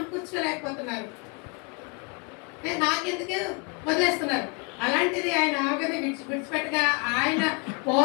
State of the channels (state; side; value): quieter; right; 31.7 dB